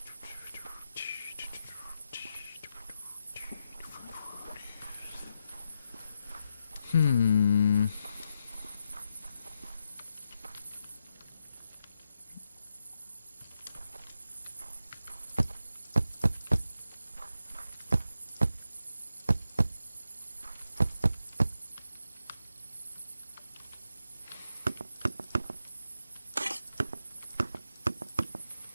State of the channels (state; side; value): inverted; both; correlation -0.86